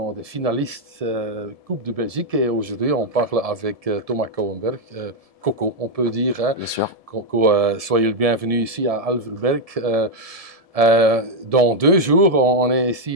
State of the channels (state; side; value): late; left; 1.7 ms